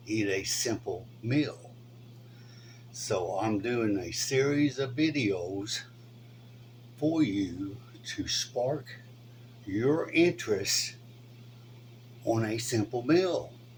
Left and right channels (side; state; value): both; identical; correlation 1.00